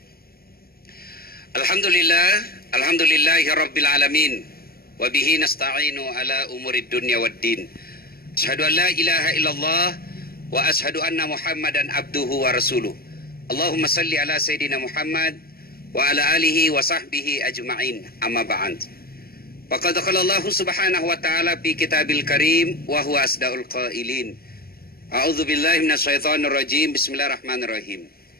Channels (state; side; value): late; right; 0.44 ms